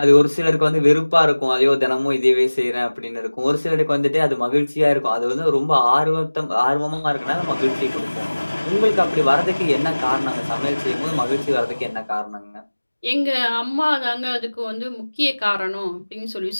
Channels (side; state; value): both; inverted; correlation -1.00